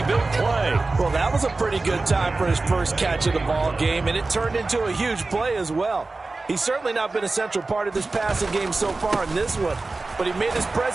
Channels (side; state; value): left; quieter; 3.5 dB